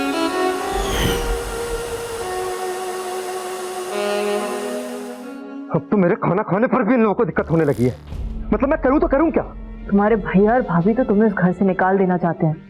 अब तो मेरे खाना खाने पर भी इन लोगों को दिक्कत होने लगी है। मतलब मैं करूं तो करूं क्या? तुम्हारे भैया और भाभी तो तुम्हें इस घर से निकाल देना चाहते हैं।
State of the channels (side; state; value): both; identical; correlation 1.00